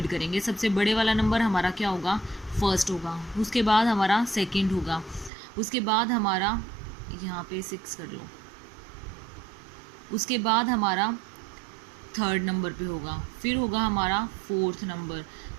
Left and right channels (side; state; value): left; drops out; at 5.3 s